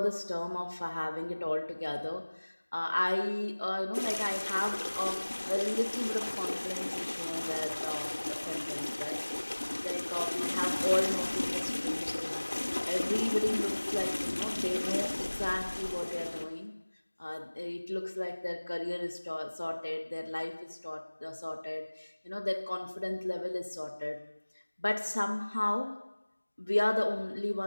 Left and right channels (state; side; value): inverted; both; correlation -1.00